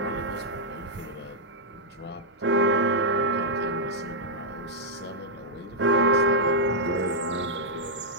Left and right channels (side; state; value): both; normal; correlation -0.06